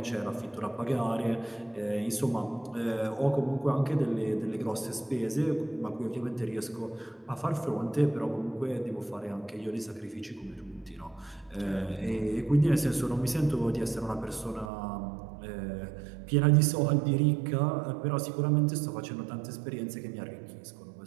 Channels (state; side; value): drops out; left; at 14.7 s